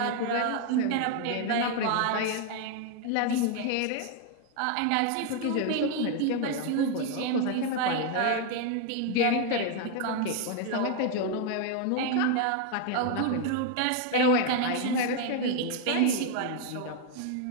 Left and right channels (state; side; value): different; both; correlation 0.01